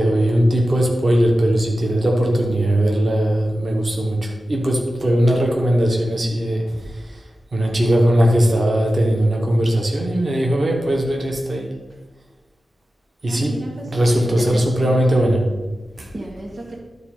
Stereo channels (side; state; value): both; normal; correlation 0.93